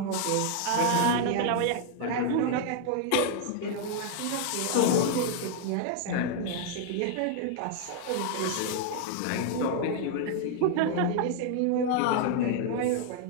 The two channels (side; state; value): both; different; correlation 0.00